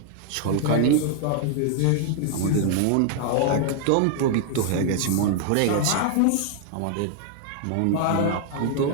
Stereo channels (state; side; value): different; both; correlation 0.00